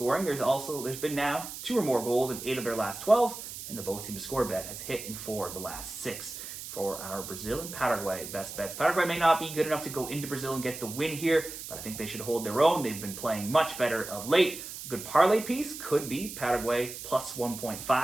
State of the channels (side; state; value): right; noise; hiss, 10 dB below the sound